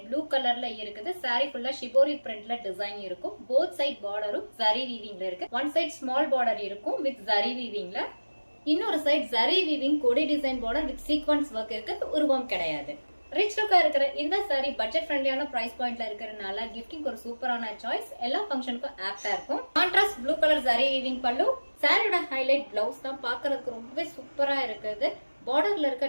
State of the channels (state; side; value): inverted; both; correlation -1.00